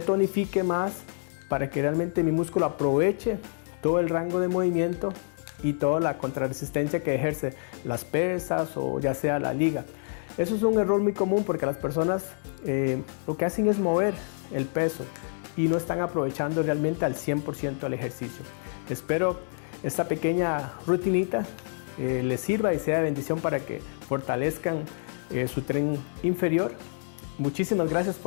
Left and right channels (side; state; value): right; silent; 60 dB below the other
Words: más, para que realmente mi músculo aproveche todo el rango de movimiento y toda la contrarresistencia que ejerce las pesas o ya sea la liga. Eso es un error muy común porque las personas lo que hacen es mover el peso y no están aprovechando realmente al 100% el ejercicio. Espero esta pequeña rutinita les sirva y sea de bendición para que fortalezcan su tren inferior. Muchísimas gracias